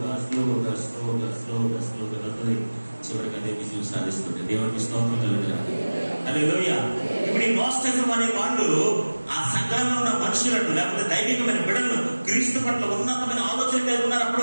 స్లోగా స్లోగా స్లోగా స్లోగా వెళ్తుంది, చివరికి అదే విజయం సాధిస్తుంది. దేవునికి స్తోత్రం కలుగుతుంది. హల్లెలూయా. ఇప్పుడు ఈ నోస్టిజం అనే వాళ్ళు ఆ సంఘంలో ఉన్న మనుషులను, లేకపోతే దైవికమైన బిడ్డలను క్రీస్తు పట్ల ఉన్నతమైన ఆలోచన కలిగి ఉన్నారు అప్పటి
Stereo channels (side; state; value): both; inverted; correlation -1.00